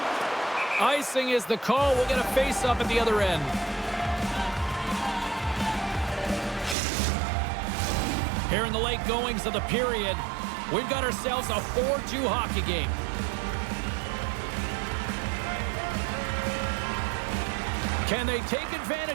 Icing is the call. We'll get a face-up at the other end. Here in the late goings of the period, we've got ourselves a 4-2 hockey game. Can they take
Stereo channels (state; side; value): drops out; left; at 6.8 s